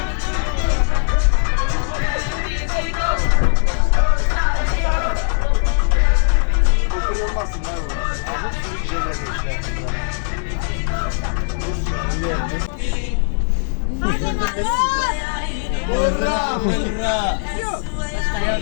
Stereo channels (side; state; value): right; silent; digital silence